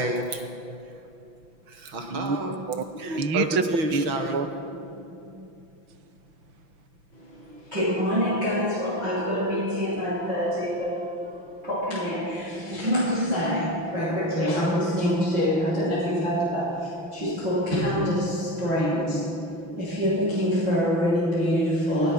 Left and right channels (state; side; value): late; left; 6.0 ms